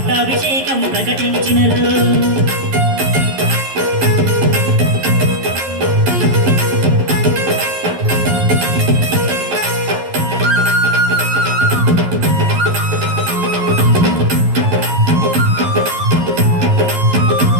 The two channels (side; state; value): left; late; 11 ms